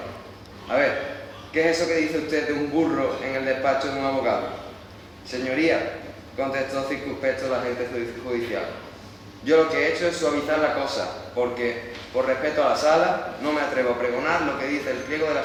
A ver, ¿qué es eso que dice usted de un burro en el despacho de un abogado? Señoría, contestó circunspecto el agente judicial, yo lo que he hecho es suavizar la cosa, porque, por respeto a la sala, no me atrevo a pregonar lo que dice el pliego de la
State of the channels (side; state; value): both; identical; correlation 1.00